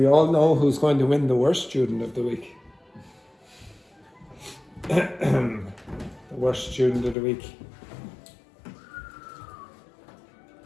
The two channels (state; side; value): drops out; right; at 7.2 s